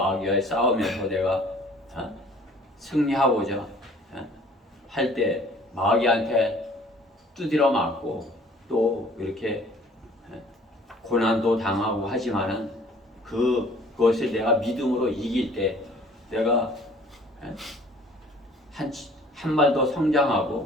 싸움에서 내가 승리하고자 할 때 마귀한테 두드려 맞고 또 이렇게 고난도 당하고 하지만은 그것을 내가 믿음으로 이길 때 내가 한 발 더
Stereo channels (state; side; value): normal; both; correlation 0.53